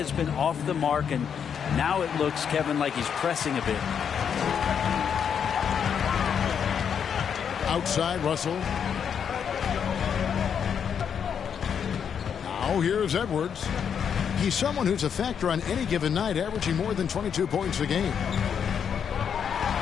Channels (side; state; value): right; quieter; 7.6 dB